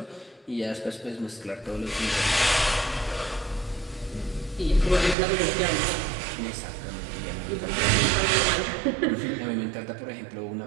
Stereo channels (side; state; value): left; drops out; at 5.2 s